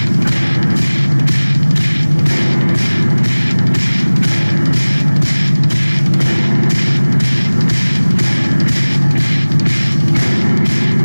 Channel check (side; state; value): both; inverted; correlation -1.00